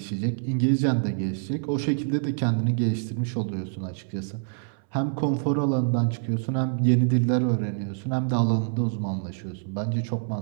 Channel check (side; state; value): left; silent; 61 dB below the other